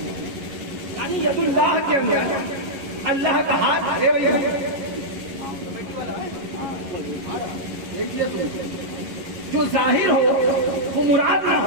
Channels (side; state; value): left; late; 11 ms